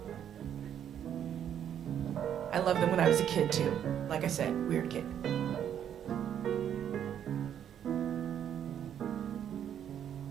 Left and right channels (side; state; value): left; quieter; 9.5 dB